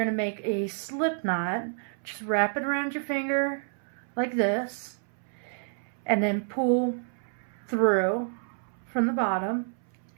to make a slip knot. Just wrap it around your finger like this and then pull through from the bottom,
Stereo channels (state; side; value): silent; left; 58 dB below the other